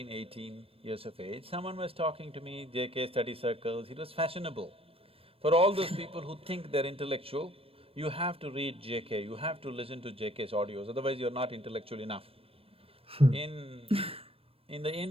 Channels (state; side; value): late; left; 0.28 ms